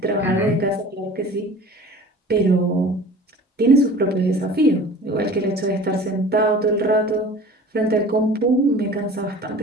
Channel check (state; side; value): normal; both; correlation 0.42